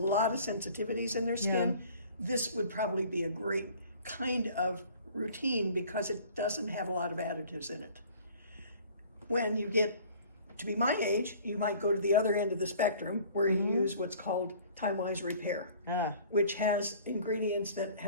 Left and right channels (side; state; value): both; inverted; correlation -0.50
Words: of sensitivities in their skin, this would probably be a great kind of routine, because it doesn't have a lot of additives in it. When you get to be my age, you might go to the other end of the spectrum, where you use what's called Time-Wise Repair, which has ingredients that